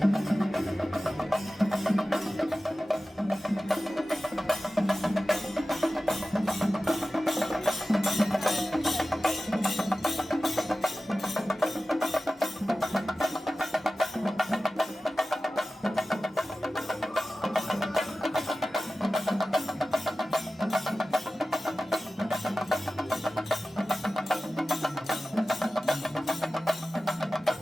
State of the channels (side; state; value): both; normal; correlation 0.95